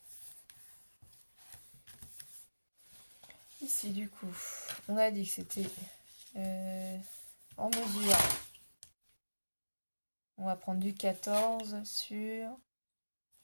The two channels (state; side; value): inverted; both; correlation -1.00